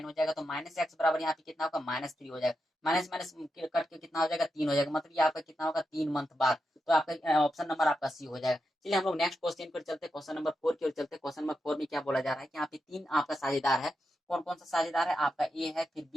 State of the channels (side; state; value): both; normal; correlation 0.87